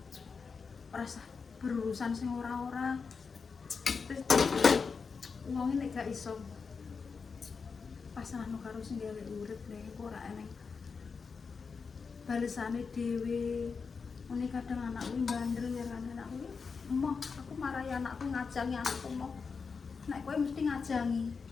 rasa berurusan sing ora-ora terus wong nek gak iso pasrahno karo sing gawe urip nek ora eneng balesane dhewe ngene kadang anakku bandel ya kan anakku emoh aku marahi anakku ngajangi anakku emoh nek kowe mesti ngajangi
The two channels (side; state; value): right; quieter; 5.2 dB